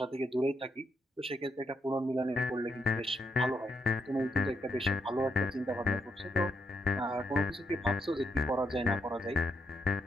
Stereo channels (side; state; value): both; normal; correlation 0.79